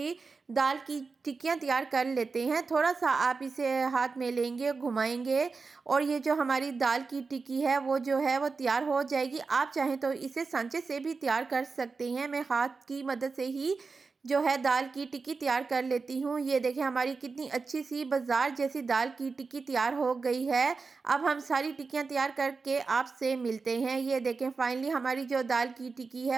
दाल की टिक्कियाँ तैयार कर लेते हैं। थोड़ा सा आप इसे हाथ में लेंगे, घुमाएंगे और ये जो हमारी दाल की टिक्की है वो जो है वो तैयार हो जाएगी। आप चाहें तो इसे सांचे से भी तैयार कर सकते हैं। मैं हाथ की मदद से ही जो है दाल की टिक्की तैयार कर लेती हूँ। ये देखें हमारी कितनी अच्छी सी बाज़ार जैसी दाल की टिक्की तैयार हो गई है। अब हम सारी टिक्कियाँ तैयार करके आपसे मिलते हैं। ये देखें फाइनली हमारी जो दाल की टिक्की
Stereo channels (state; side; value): quieter; left; 4.5 dB